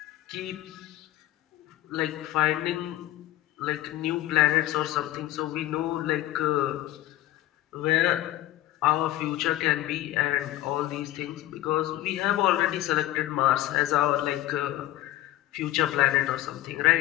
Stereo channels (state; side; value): quieter; right; 14.9 dB